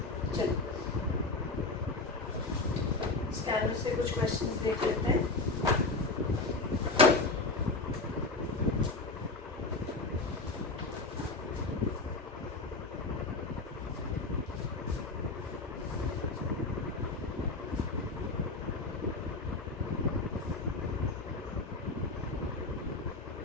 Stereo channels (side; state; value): right; quieter; 3.4 dB